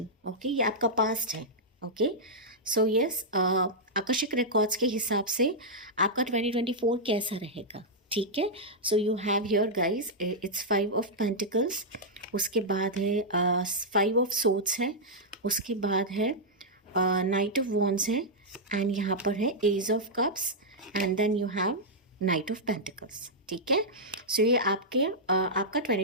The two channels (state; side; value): normal; both; correlation -0.08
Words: okay. ये आपका पास्ट है, ओके। सो यस, आकस्मिक रिकॉर्ड्स के हिसाब से आपका 2024 कैसा रहेगा, ठीक है। So you have here guys, it's 5 of pentacles, उसके बाद है 5 ऑफ सोर्ड्स है, उसके बाद है नाइट ऑफ वॉन्ड्स है, एंड यहाँ पर है ace of cups, and then you have knight of pentacles, ठीक है। सो ये आपका